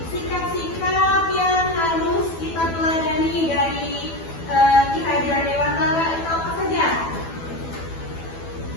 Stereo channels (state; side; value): late; right; 12 ms